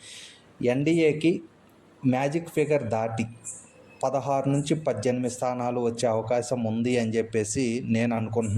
ఎన్డీఏకి మ్యాజిక్ ఫిగర్ దాటి 16 నుంచి 18 స్థానాలు వచ్చే అవకాశం ఉంది అని చెప్పేసి నేను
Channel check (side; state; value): both; identical; correlation 1.00